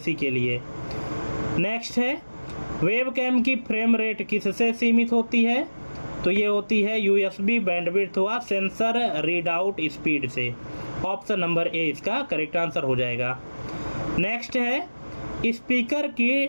के लिए। नेक्स्ट है, वेबकैम की फ्रेम रेट किससे सीमित होती है? तो ये होती है USB बैंडविड्थ व सेंसर रीडआउट स्पीड से, ऑप्शन नंबर ए इसका करेक्ट आंसर हो जाएगा। नेक्स्ट है, स्पीकर की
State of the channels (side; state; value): both; inverted; correlation -1.00